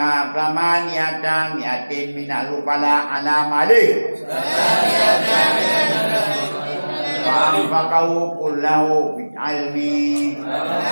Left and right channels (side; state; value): both; inverted; correlation -1.00